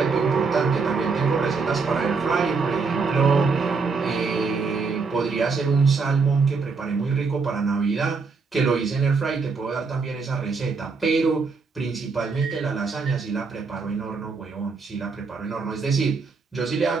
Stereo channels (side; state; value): left; quieter; 4.7 dB